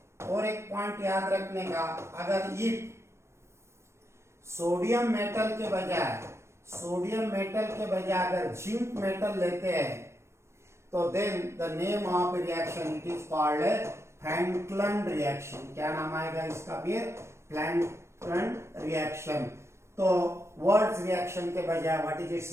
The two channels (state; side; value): late; left; 0.13 ms